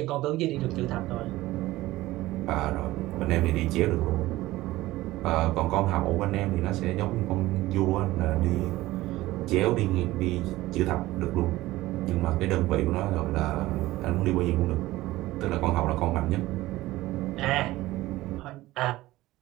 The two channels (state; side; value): quieter; left; 17.5 dB